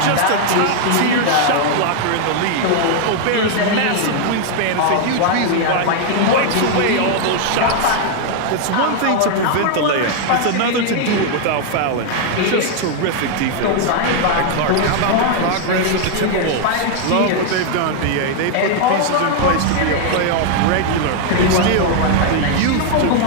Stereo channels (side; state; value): both; different; correlation 0.00